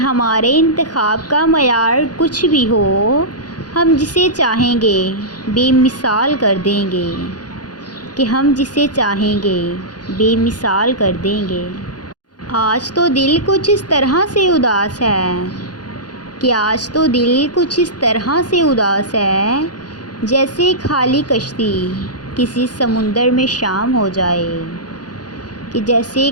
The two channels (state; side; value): late; right; 0.69 ms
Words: انتخاب کا معیار کچھ بھی ہو، ہم جسے چاہیں گے بے مثال کر دیں گے، کہ ہم جسے چاہیں گے بے مثال کر دیں گے۔ آج تو دل کچھ اس طرح سے اداس ہے، کہ آج تو دل کچھ اس طرح سے اداس ہے، جیسے خالی کشتی کسی سمندر میں شام ہو جائے، کہ جیسے